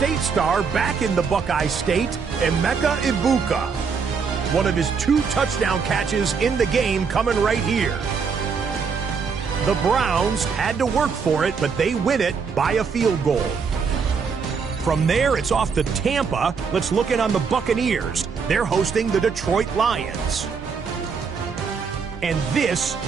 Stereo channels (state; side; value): quieter; left; 5.7 dB